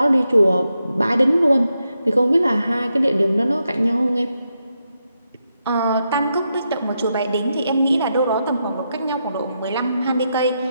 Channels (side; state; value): both; inverted; correlation -0.85